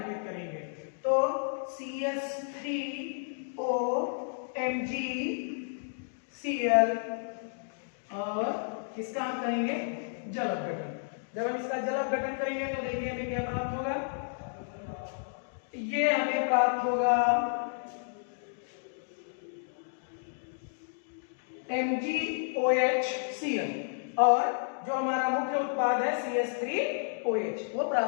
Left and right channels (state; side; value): silent; right; digital silence